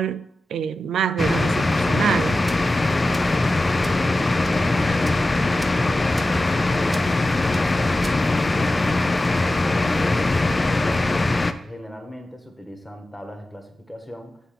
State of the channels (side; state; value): both; normal; correlation 0.94